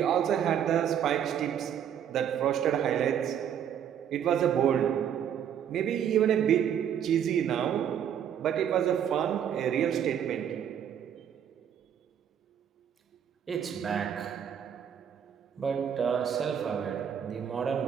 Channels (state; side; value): quieter; left; 9.0 dB